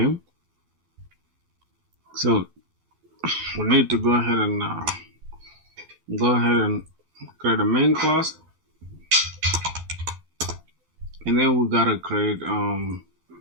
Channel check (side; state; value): left; late; 12 ms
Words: so we need to go ahead and create a main class, and then we gotta create